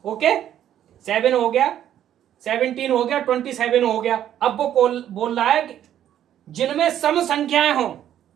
ओके, 7 हो गया, 17 हो गया, 27 हो गया। अब वो बोल रहा है जिनमें सम संख्याएं हों,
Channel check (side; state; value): left; quieter; 10.9 dB